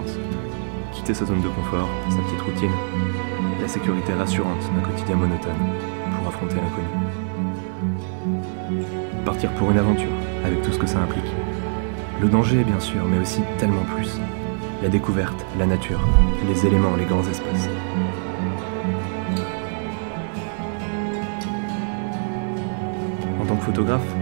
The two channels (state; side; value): silent; left; digital silence